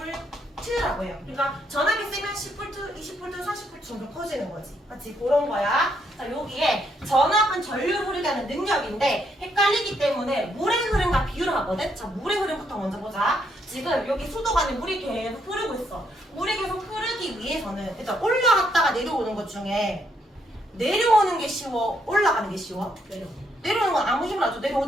해요. 그러니까 전압이 세면 10V, 20V, 40V 정도 커지는 거지. 맞지? 그런 거야. 자, 여기에 전압은 전류를 흐르게 하는 능력인데 헷갈리기 때문에 물의 흐름과 비유를 하거든. 자, 물의 흐름부터 먼저 보자. 지금 여기 수도 안에 물이 계속 흐르고 있어. 물이 계속 흐르기 위해서는 일단 올라갔다가 내려오는 것 중에 내려오는 게 쉬워? 올라가는 게 쉬워? 내려오는 건 아무 힘을 안 줘.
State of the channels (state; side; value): normal; both; correlation 0.74